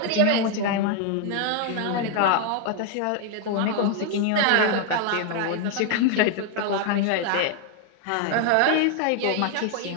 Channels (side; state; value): both; different; correlation 0.01